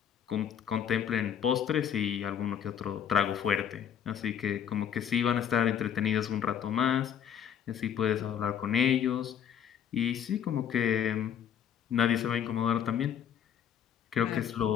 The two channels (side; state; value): right; quieter; 8.9 dB